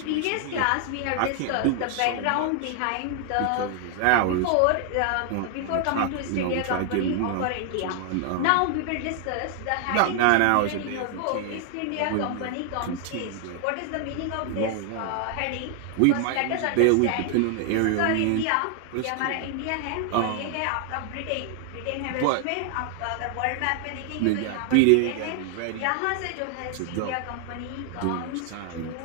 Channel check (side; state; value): both; different; correlation 0.00